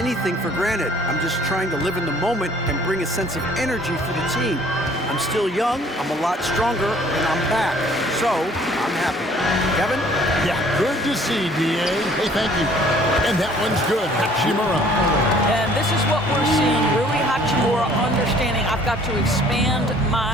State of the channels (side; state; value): both; normal; correlation 0.56